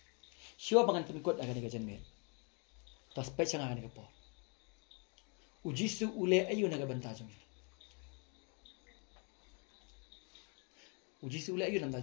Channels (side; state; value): right; quieter; 36.3 dB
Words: Siapa bangan pengikut akan dikajian mer. Tas pecah akan dikapo. Ujisu ule ayu naga bentajung. Ujisu ule ayu